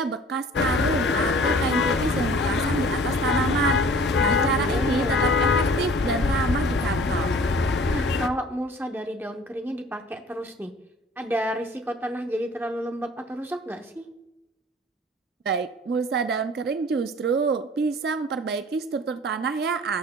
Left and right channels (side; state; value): both; normal; correlation 0.48